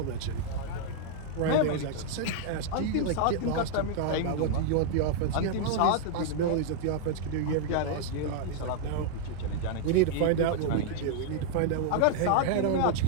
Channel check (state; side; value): different; both; correlation -0.01